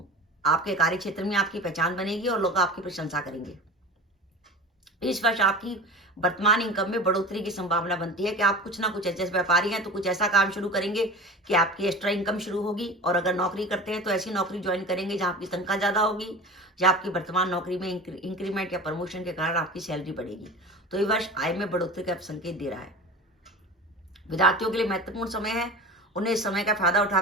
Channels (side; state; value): both; normal; correlation 0.34